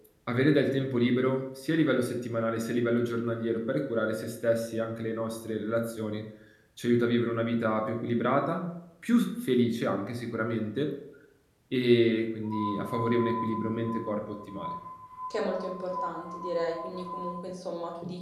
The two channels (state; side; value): identical; both; correlation 1.00